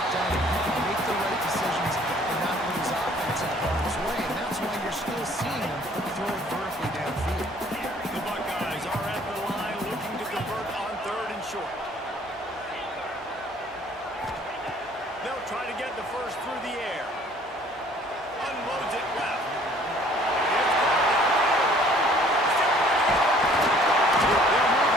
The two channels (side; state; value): both; normal; correlation 0.57